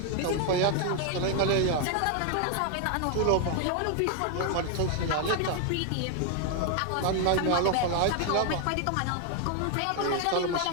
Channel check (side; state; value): both; different; correlation 0.00